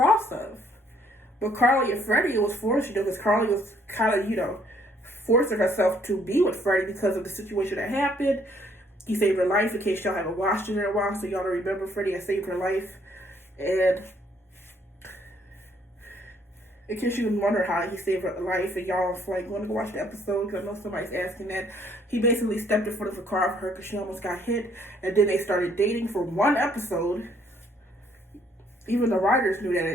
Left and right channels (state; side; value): normal; both; correlation 0.65